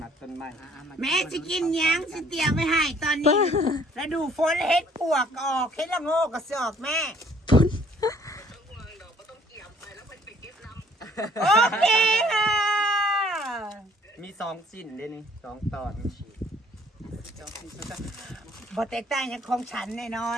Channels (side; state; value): both; normal; correlation 0.60